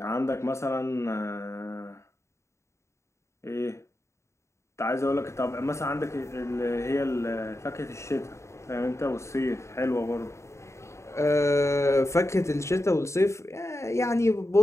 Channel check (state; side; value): late; right; 0.14 ms